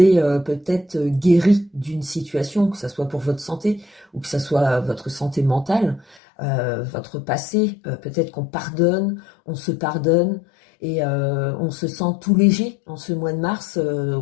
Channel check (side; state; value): right; drops out; at 6.2 s